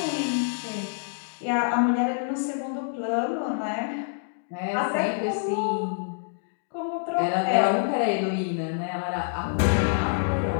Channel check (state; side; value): silent; right; digital silence